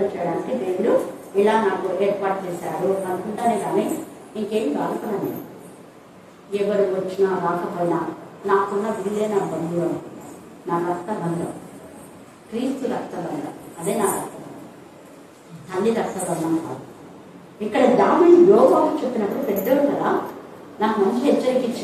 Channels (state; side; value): identical; both; correlation 1.00